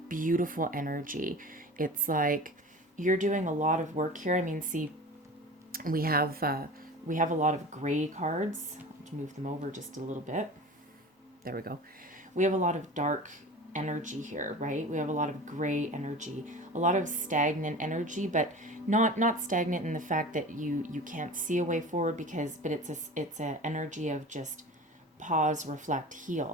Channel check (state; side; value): normal; both; correlation 0.36